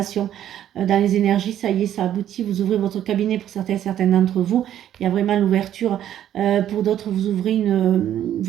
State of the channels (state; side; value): quieter; left; 11.1 dB